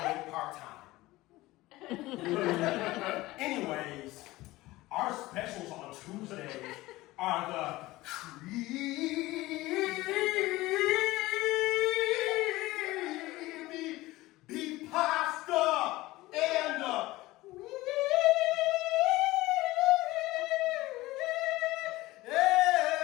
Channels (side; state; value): right; quieter; 18.7 dB